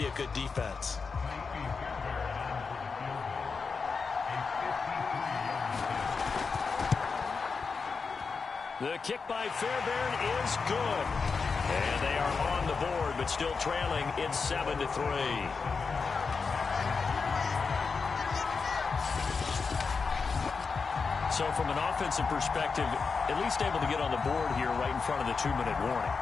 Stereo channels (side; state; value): right; quieter; 5.0 dB